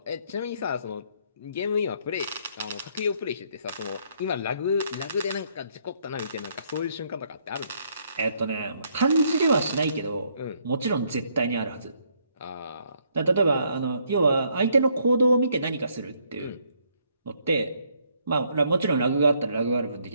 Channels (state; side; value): inverted; both; correlation -0.70